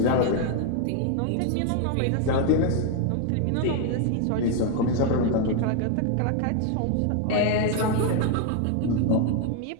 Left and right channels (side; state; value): both; different; correlation 0.01